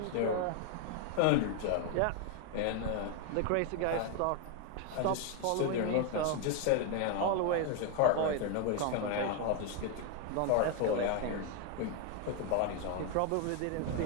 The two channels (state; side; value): different; both; correlation 0.01